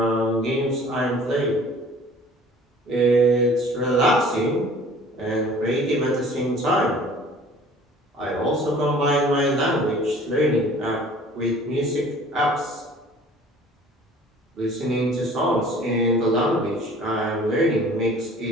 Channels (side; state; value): both; normal; correlation 0.49